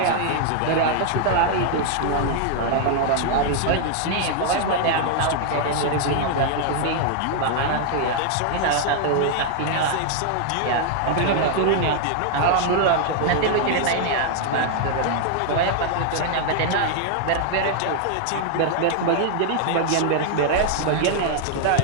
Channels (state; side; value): different; both; correlation 0.00